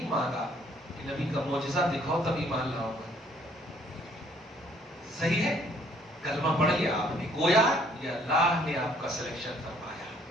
مانگا کہ نبی کا معجزہ دکھاؤ تب ایمان لاؤ گا، صحیح ہے؟ کلمہ پڑھ لیا آپ نے، گویا یہ اللہ نے آپ کا سلیکشن فرمایا،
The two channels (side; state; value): both; normal; correlation 0.62